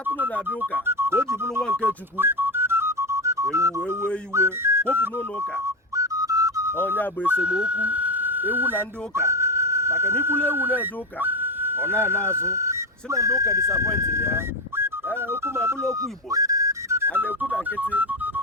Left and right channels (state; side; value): normal; both; correlation 0.13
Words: na-abịa ụka ka o ji bụrụ nwa nke Chukwu ewu wee wee iwe kwopụ n'ụlọ ụka ọnya bụ esemokwu ewu na ndị ụka maka na ikwulu ewu na-eje ụka ọ na-ana azụ si na ndị ụka disapọintili ya okwu ma bụrụ okwu Igbo a na-ekwu na nkịtị